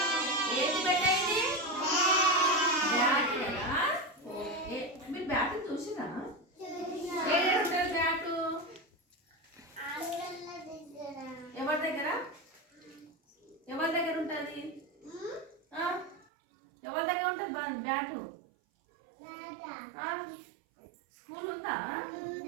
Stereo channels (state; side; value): drops out; left; at 16.2 s